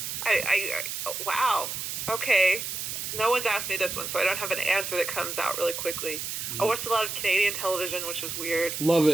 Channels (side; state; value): right; noise; hiss, 5 dB below the sound